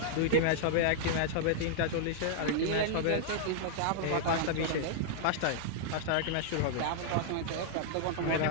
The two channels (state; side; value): different; both; correlation -0.01